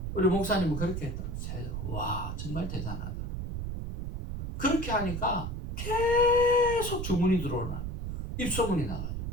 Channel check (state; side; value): noise; right; rumble, 4 dB below the sound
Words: 우리 목사님은 그렇게 했더라고요. 와 정말 대단하다. 그렇게 하니까 계속 주문이 들어오나 입소문이 나가지고